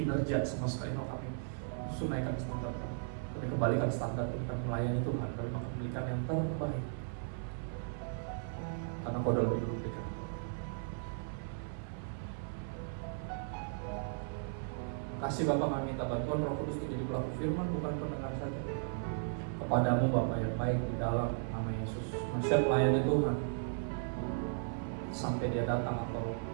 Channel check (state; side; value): silent; left; 54 dB below the other